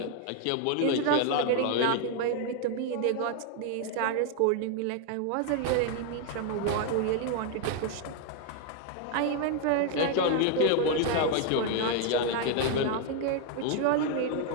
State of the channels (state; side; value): different; both; correlation 0.01